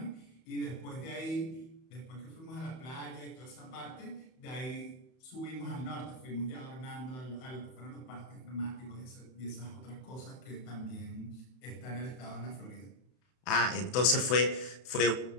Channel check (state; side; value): late; right; 31 ms